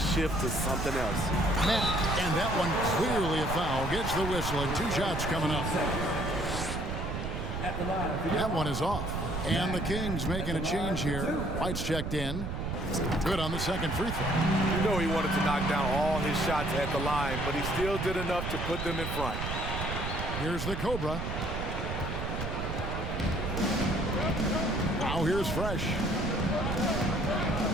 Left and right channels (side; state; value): right; noise; rumble, 4 dB below the sound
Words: shift to something else. And that one clearly a foul. Gets the whistle, and 2 shots coming up. That one is off. And the Kings making a change here. White's checked in. Good on the second free throw. You know he wanted to knock down all his shots at the line, but he still did enough to put them in front. Here's the Cobra. Now here's Fresh.